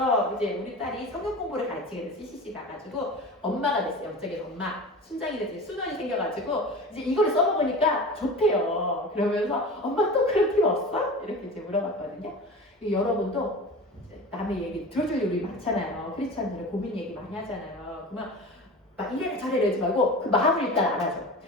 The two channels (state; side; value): normal; both; correlation 0.33